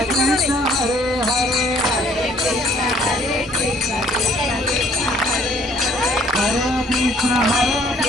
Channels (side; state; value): both; normal; correlation 0.60